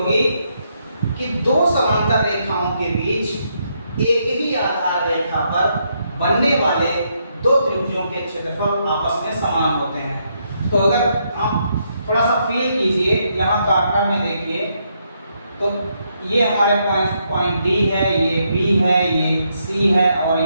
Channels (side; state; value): both; inverted; correlation -0.77